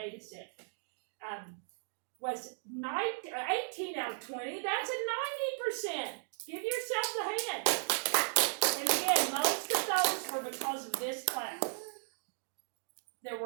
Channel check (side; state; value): left; silent; digital silence